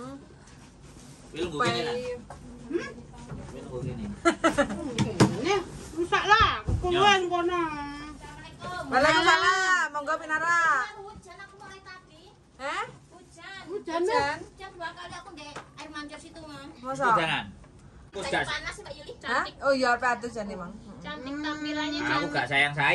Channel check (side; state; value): both; identical; correlation 1.00